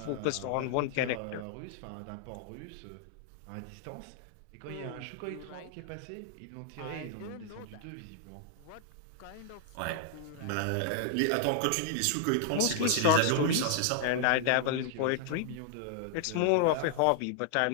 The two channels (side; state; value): both; different; correlation 0.00